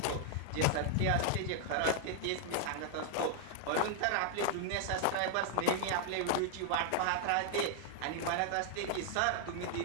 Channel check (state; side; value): different; both; correlation 0.00